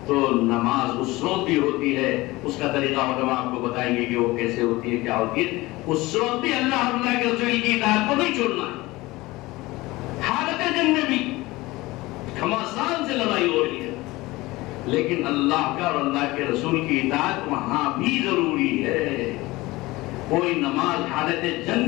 تو نماز اس وقت بھی ہوتی ہے، اس کا طریقہ علماء آپ کو بتائیں گے کہ وہ کیسے ہوتی ہے، کیا ہوتی ہے۔ اس وقت بھی اللہ کے رسول کی اطاعت کو نہیں چھوڑنا ہے، حالت جنگ میں بھی گھمسان سے لڑائی ہو رہی ہے، لیکن اللہ کا اور اللہ کے رسول کی اطاعت وہاں بھی ضروری ہے۔ کوئی نماز حالت جنگ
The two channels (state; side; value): quieter; right; 20.3 dB